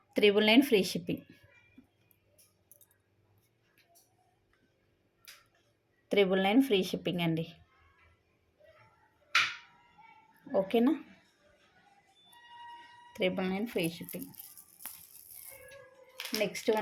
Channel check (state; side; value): identical; both; correlation 1.00